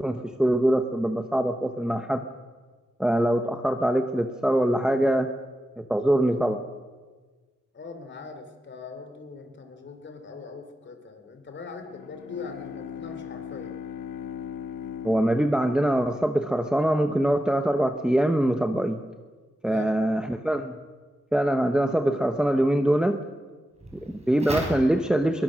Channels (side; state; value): both; normal; correlation 0.90